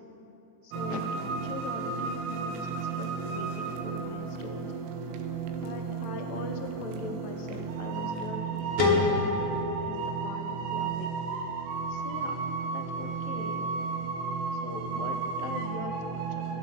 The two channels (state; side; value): late; left; 18 ms